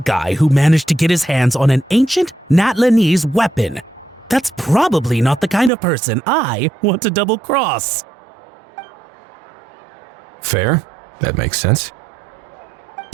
who managed to get his hands on an ancient Natlanese weapon. That's probably not the kind of person I want to double-cross. Fair. That makes sense.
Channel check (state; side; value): drops out; left; at 5.7 s